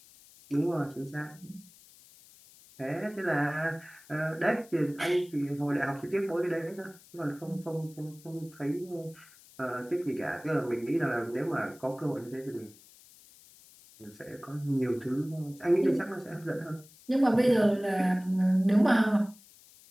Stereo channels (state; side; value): noise; left; hiss, 24 dB below the sound